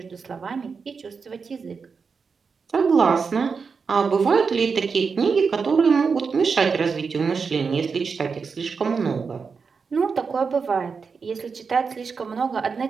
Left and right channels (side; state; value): left; quieter; 5.3 dB